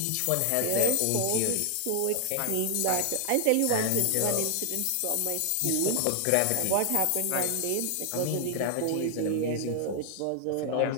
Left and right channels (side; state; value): both; different; correlation 0.00